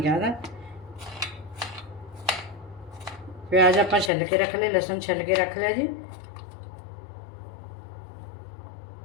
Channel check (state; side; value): drops out; right; at 4.1 s